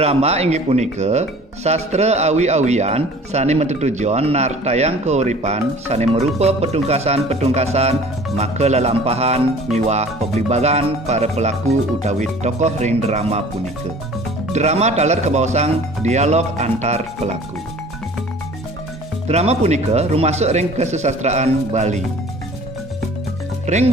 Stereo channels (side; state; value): both; normal; correlation 0.47